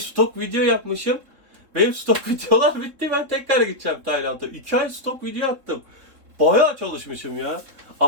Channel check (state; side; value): late; left; 3.7 ms